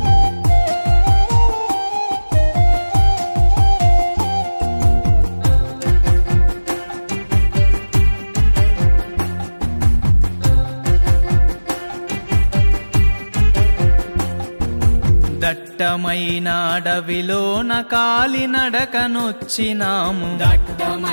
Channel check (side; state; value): both; inverted; correlation -1.00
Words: దట్టమైన అడవిలోన కాలినడకనొచ్చినాము.